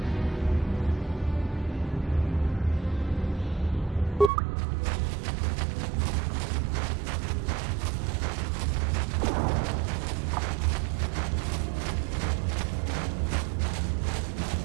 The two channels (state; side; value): drops out; left; at 4.3 s